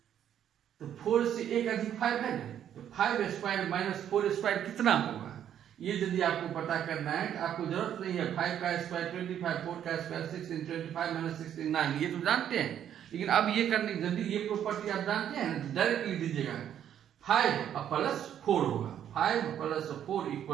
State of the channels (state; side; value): quieter; left; 10.0 dB